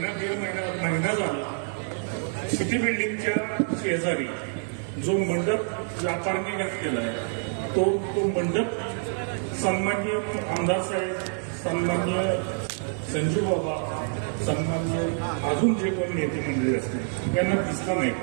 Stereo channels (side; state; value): left; silent; 60 dB below the other